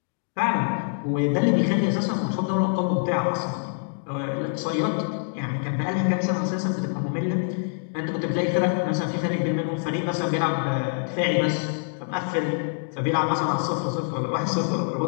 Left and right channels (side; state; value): right; silent; digital silence